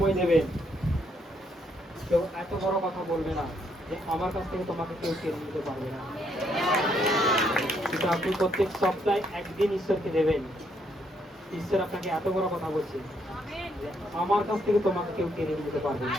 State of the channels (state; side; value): normal; both; correlation 0.73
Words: দেবেন, কেউ এত বড় কথা বলবে না যে আমার কাছ থেকে তোমাকে কেউ কেড়ে নিতে পারবে না। কিন্তু আপনি প্রত্যেক সপ্তাহে একদিন ঈশ্বরকে দেবেন। ঈশ্বর আপনাকে এত বড় কথা বলছে যে আমার কাছ থেকে তোমাকে কেউ কেড়ে নিতে পারবে না।